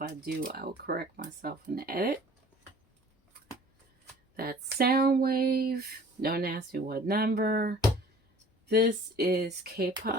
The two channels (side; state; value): both; normal; correlation 0.49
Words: I do, I will correct myself in the edit. That's Soundwave. Don't ask me what number. This is